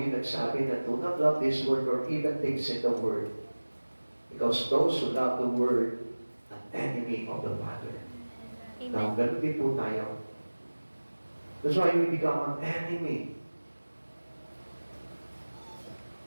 nagsabi na do not love this world or even things in the world. Because those who love the world are enemy of the Father. Now, Amen. ganun din po tayo. That's why we become an enemy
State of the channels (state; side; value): inverted; both; correlation -1.00